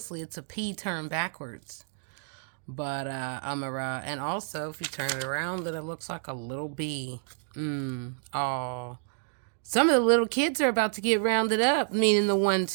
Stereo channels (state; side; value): silent; left; 58 dB below the other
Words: it's a P turned backwards. But and also if you turn it around, then it looks like a little B. Oh, some of the little kids are about to get rounded up, meaning the ones